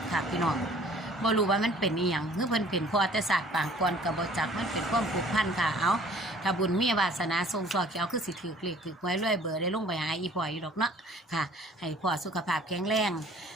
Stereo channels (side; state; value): both; normal; correlation 0.53